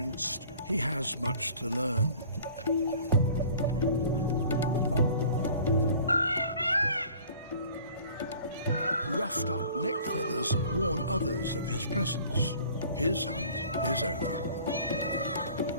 he has much to learn. Roughed up neck feathers warn others of his presence. His hunt is over.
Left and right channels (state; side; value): inverted; both; correlation -0.49